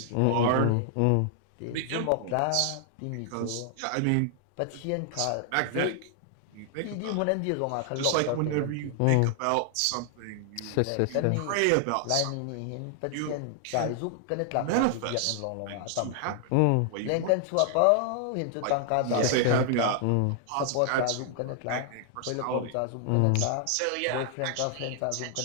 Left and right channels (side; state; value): both; different; correlation 0.00